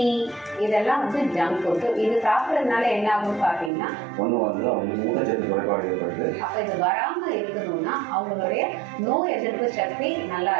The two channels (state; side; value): drops out; left; at 3.7 s